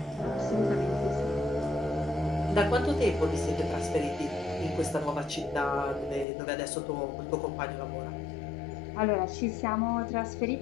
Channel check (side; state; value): right; drops out; at 6.2 s